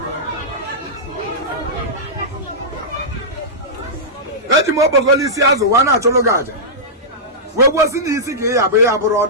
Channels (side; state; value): both; normal; correlation -0.14